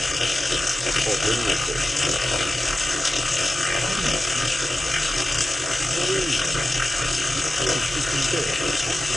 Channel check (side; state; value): both; normal; correlation 0.94